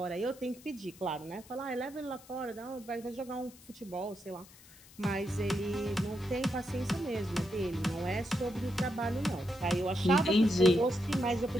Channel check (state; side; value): noise; left; hiss, 22 dB below the sound